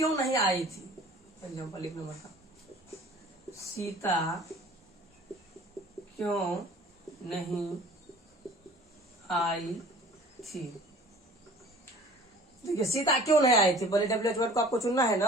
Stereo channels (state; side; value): normal; both; correlation 0.47